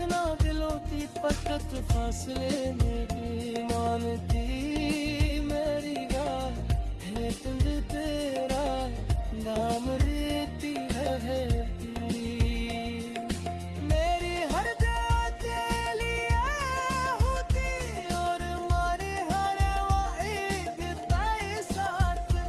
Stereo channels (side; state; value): both; identical; correlation 1.00